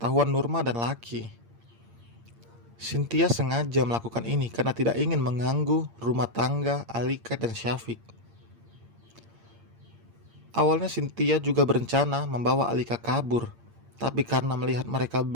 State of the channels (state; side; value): late; left; 8.7 ms